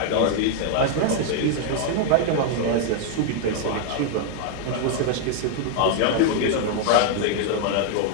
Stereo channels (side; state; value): both; different; correlation 0.00